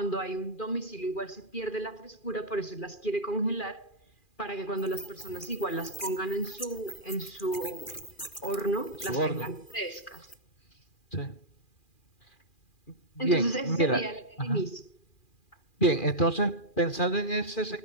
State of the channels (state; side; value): late; right; 2.4 ms